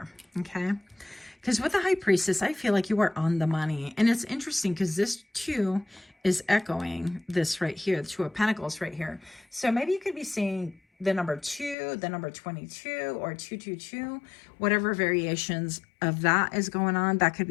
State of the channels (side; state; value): right; drops out; at 11.8 s